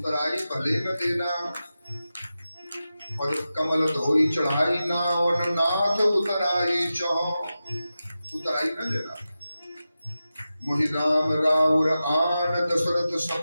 भले न देना, और कमल धोई चढ़ाई ना, और नाथ उतराई चहो, उतराई न देना। मोहि राम राउर आन दशरथ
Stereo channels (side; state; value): both; inverted; correlation -0.93